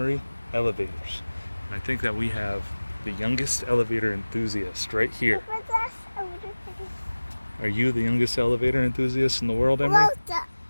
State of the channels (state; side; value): inverted; both; correlation -1.00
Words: elevators. And I think that we have the youngest elevator enthusiast right here. Are you the youngest elevator enthusiast in the world, Emery?